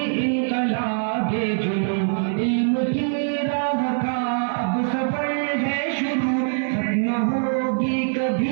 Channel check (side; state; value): left; silent; digital silence